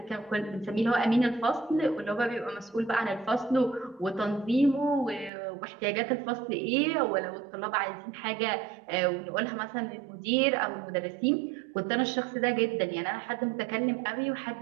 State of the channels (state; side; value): drops out; left; at 5.3 s